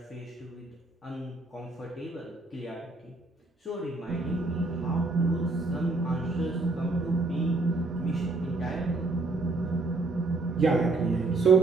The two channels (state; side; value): quieter; left; 3.3 dB